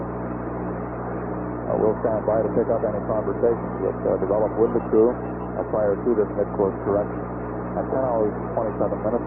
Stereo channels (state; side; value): identical; both; correlation 1.00